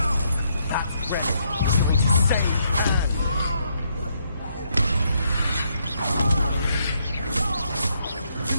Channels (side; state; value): both; inverted; correlation -0.74